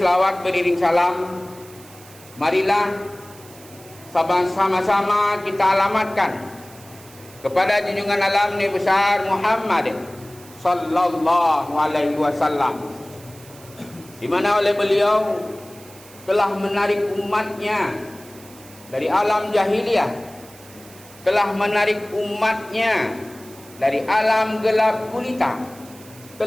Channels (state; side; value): noise; right; hiss, 21 dB below the sound